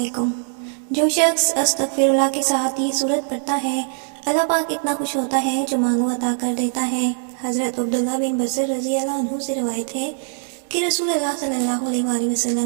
جو شخص استغفراللہ کے ساتھ یہ سورت پڑھتا ہے، اللہ پاک اتنا خوش ہوتا ہے جو مانگو عطا کر دیتا ہے۔ حضرت عبداللہ بن بصر رضی اللہ عنہ سے روایت ہے کہ رسول اللہ صلی اللہ علیہ وآلہ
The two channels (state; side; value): silent; left; 61 dB below the other